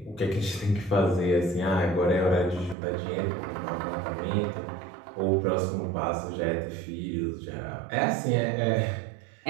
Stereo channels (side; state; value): left; drops out; at 2.8 s